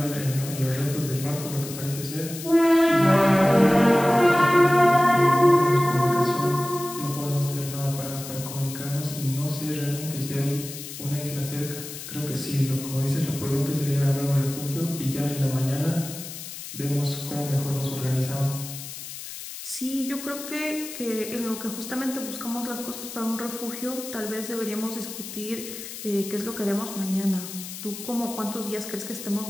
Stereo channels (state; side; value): noise; left; hiss, 10 dB below the sound